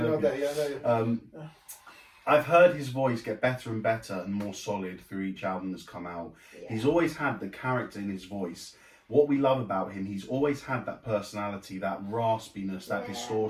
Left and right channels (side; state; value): both; identical; correlation 1.00